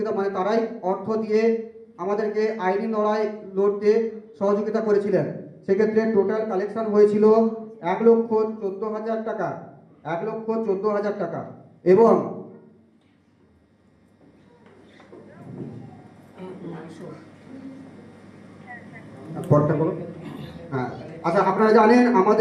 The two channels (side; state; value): both; identical; correlation 1.00